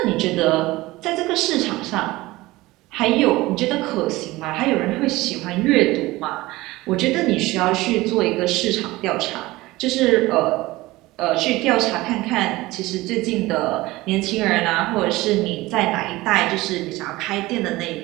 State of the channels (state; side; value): quieter; left; 19.4 dB